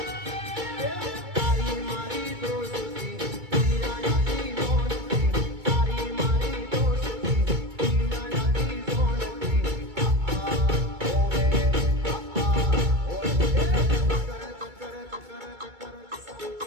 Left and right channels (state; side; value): late; left; 2.2 ms